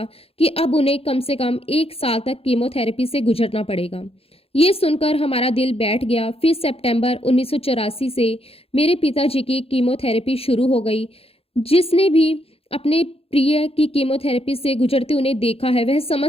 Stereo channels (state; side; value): late; right; 0.28 ms